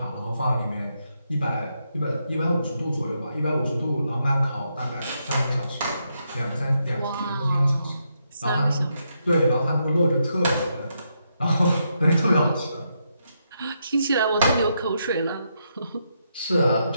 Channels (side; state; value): both; inverted; correlation -0.80